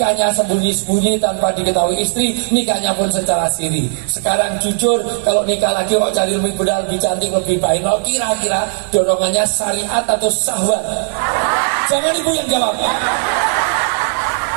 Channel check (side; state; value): left; silent; digital silence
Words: sembunyi-sembunyi tanpa diketahui istri, nikahnya pun secara siri. Sekarang jujur, kalau nikah lagi kok cari lebih muda, lebih cantik, lebih bainol, kira-kira dorongannya syariat atau syahwat? Jangan ibu yang jawab.